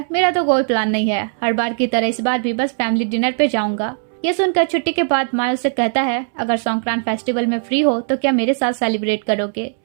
मेरा तो कोई प्लान नहीं है, हर बार की तरह इस बार भी बस फैमिली डिनर पे जाऊंगा। ये सुनकर छुट्टी के बाद माई उससे कहता है अगर संक्रांत फेस्टिवल में फ्री हो तो क्या मेरे साथ सेलिब्रेट करोगे।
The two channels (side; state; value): left; silent; 67 dB below the other